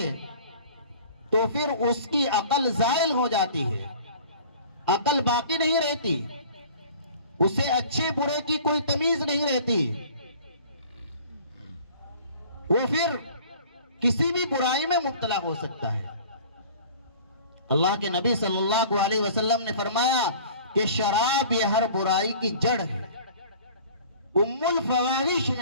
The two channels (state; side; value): inverted; both; correlation -0.47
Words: تو پھر اس کی عقل زائل ہو جاتی ہے، عقل باقی نہیں رہتی، اسے اچھے برے کی کوئی تمیز نہیں رہتی، وہ پھر کسی بھی برائی میں مبتلا ہو سکتا ہے۔ اللہ کے نبی صلی اللہ علیہ وسلم نے فرمایا کہ شراب یہ ہر برائی کی جڑ ہے، ام الفواحش